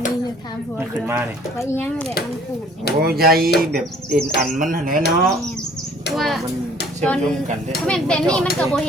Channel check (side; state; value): both; normal; correlation 0.55